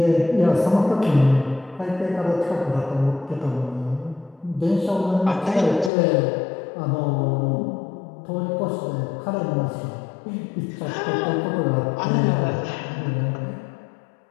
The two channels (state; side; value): drops out; right; at 5.9 s